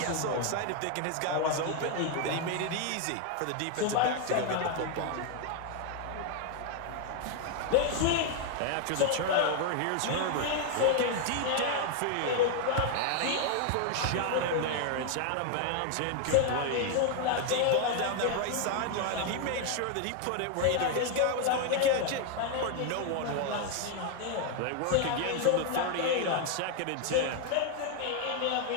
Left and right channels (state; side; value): different; both; correlation 0.00